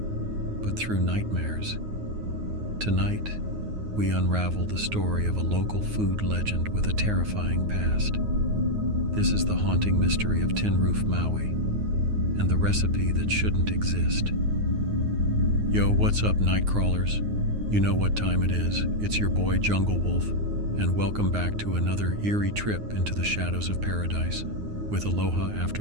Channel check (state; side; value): late; left; 9.5 ms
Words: through nightmares? Tonight, we unravel the story of a local food legend with a terrifying past. This is the haunting mystery of Tin Roof Maui, and the recipe that shouldn't exist. Yo, what's up, night crawlers? You know what time it is. It's your boy Junglewolf, and welcome back to another eerie trip into the shadows of paradise with Aloha